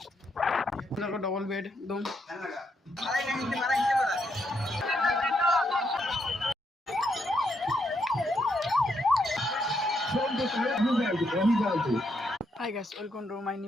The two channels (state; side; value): normal; both; correlation 0.78